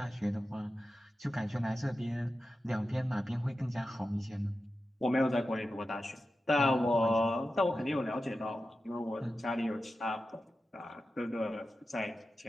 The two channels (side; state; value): both; normal; correlation 0.92